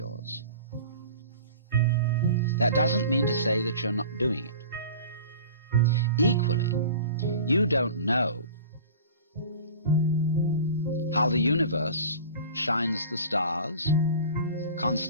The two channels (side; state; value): both; inverted; correlation -0.40